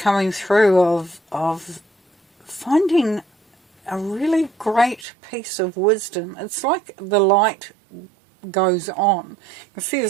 through of finding a really great piece of wisdom. It's like the light goes on. You can see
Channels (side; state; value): left; drops out; at 5.1 s